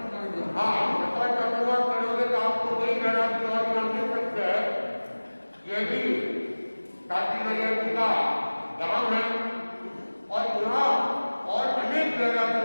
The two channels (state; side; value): inverted; both; correlation -1.00